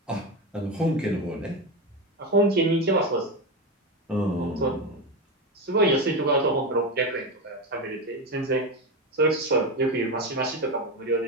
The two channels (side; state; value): both; normal; correlation 0.16